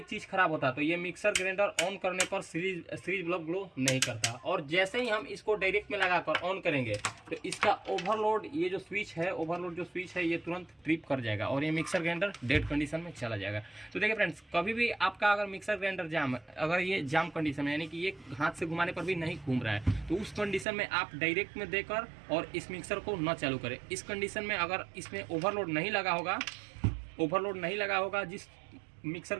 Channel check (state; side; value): drops out; left; at 20.7 s